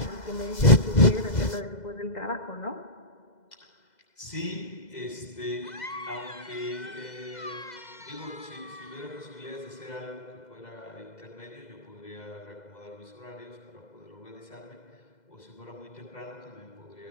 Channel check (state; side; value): late; right; 2.0 ms